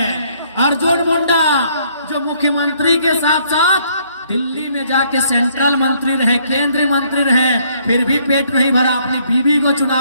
अर्जुन मुंडा जो मुख्यमंत्री के साथ साथ दिल्ली में जाके सेंट्रल मंत्री रहे, केंद्रीय मंत्री रहे, फिर भी पेट नहीं भरा, अपनी बीवी को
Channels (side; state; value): both; inverted; correlation -0.66